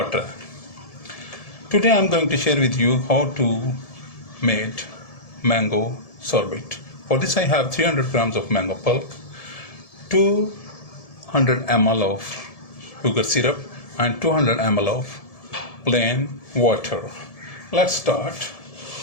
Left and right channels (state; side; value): late; right; 1.7 ms